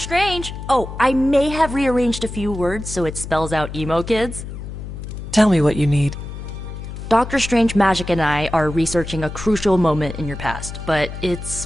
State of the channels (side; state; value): left; noise; hum, 9 dB below the sound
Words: Oh, I may have rearranged a few words so it spells out emo kids. Tell me what you need. Dr. Strange Magic and I are researching a crucial moment in your past, but